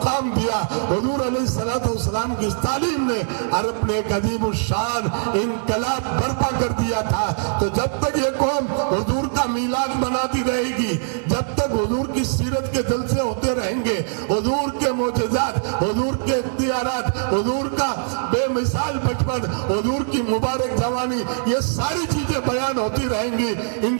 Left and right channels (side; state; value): left; silent; 56 dB below the other